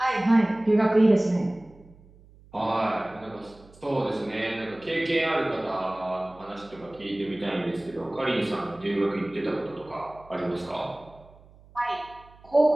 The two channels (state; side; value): noise; right; hum, 25 dB below the sound